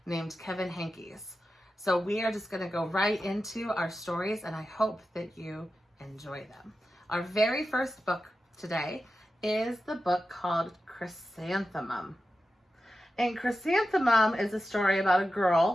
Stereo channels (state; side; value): normal; both; correlation 0.92